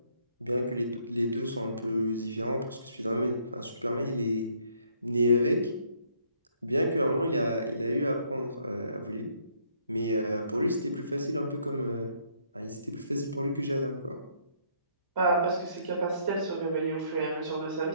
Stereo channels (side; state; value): both; inverted; correlation -0.67